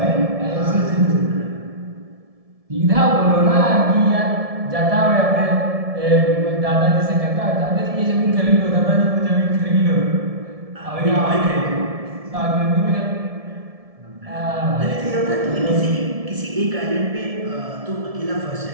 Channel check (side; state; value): left; late; 1.7 ms